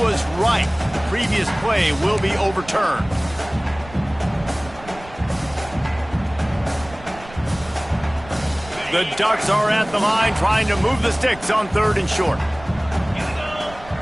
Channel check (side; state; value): right; noise; rumble, 18 dB below the sound